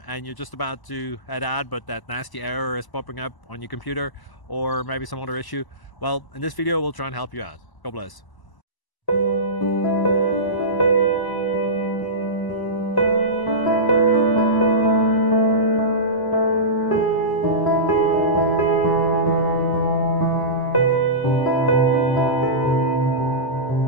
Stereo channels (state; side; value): late; right; 1.0 ms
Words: and you're just about to head out, but that nasty error is popping up on your computer, or maybe some other issue. Well, in this video we'll try and help you out. God bless.